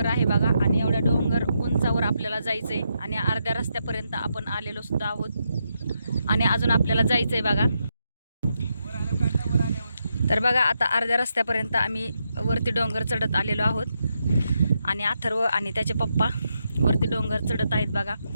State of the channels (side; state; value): both; inverted; correlation -0.82